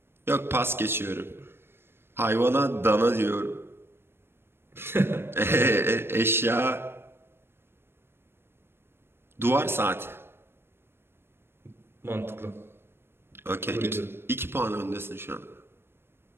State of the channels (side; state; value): left; late; 0.11 ms